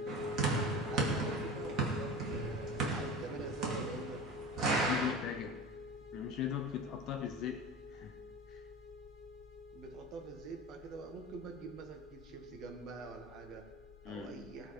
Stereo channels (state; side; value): normal; both; correlation 0.32